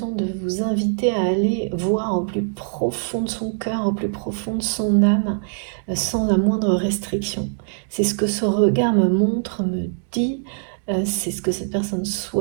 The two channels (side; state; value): left; silent; digital silence